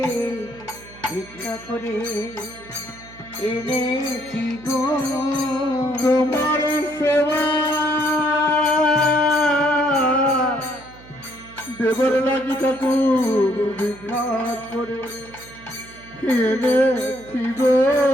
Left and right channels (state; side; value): noise; right; hum, 21 dB below the sound